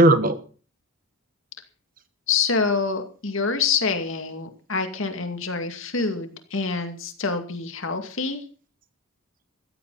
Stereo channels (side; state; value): both; normal; correlation 0.16